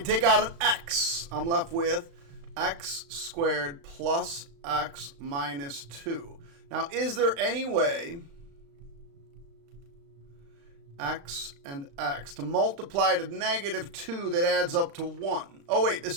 take out an x. I'm left with x squared plus x minus 2. Now, is there any way x and x to multiply to negative 2 that adds up to 1? Oh, wait,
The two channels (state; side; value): late; left; 35 ms